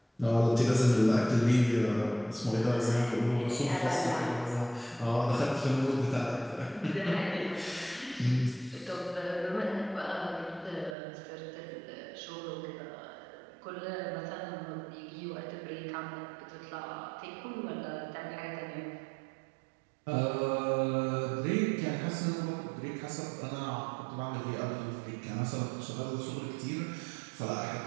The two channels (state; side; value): drops out; left; at 11.0 s